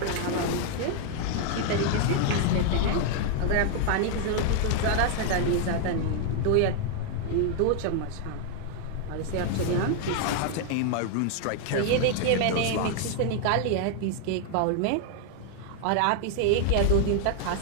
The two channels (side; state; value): both; different; correlation 0.00